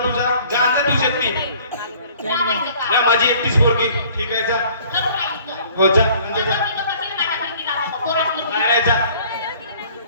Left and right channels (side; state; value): both; inverted; correlation -0.54